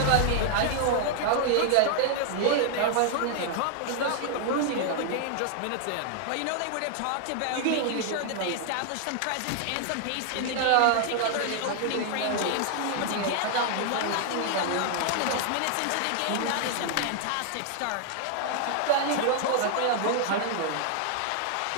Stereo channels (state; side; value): different; both; correlation 0.00